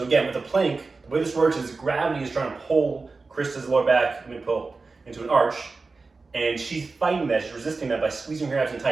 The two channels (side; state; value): left; quieter; 4.0 dB